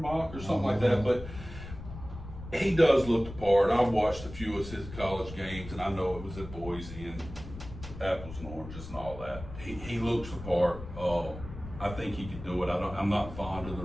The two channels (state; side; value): noise; left; rumble, 12 dB below the sound